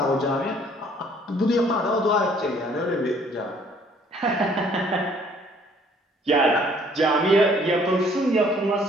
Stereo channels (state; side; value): normal; both; correlation 0.59